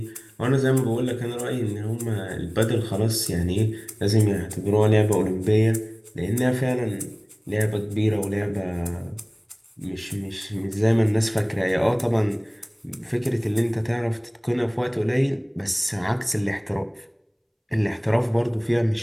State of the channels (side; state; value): both; identical; correlation 1.00